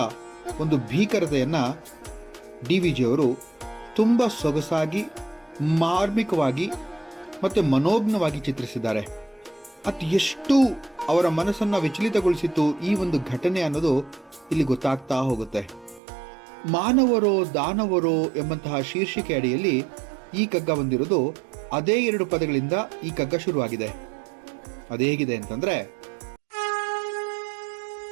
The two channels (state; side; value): drops out; left; at 16.0 s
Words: ಒಂದು ಭೀಕರತೆಯನ್ನು DVG ಅವರು ತುಂಬ ಸೊಗಸಾಗಿ, ಮಾರ್ಮಿಕವಾಗಿ ಮತ್ತು ಮನೋಜ್ಞವಾಗಿ ಚಿತ್ರಿಸಿದ್ದಾರೆ. ಅದು ಎಷ್ಟು ಅವರ ಮನಸ್ಸನ್ನು ವಿಚಲಿತಗೊಳಿಸಿತ್ತು ಈ ಒಂದು ಘಟನೆ ಅನ್ನೋದು ಇಲ್ಲಿ ಗೊತ್ತಾಗ್ತಾ ಹೋಗುತ್ತೆ. ಮಾನವರೋ ದಾನವರೋ ಎಂಬಂತಹ ಶೀರ್ಷಿಕೆ ಅಡಿಯಲ್ಲಿ ಈ ಕಗ್ಗ ಬಂದಿರೋದು ಅದೇ 2 ಪದಗಳಿಂದ ಈ ಕಗ್ಗ ಶುರುವಾಗಿದೆ. ಅದು ಹೇಗಿದೆ ಅಂತಂದ್ರೆ,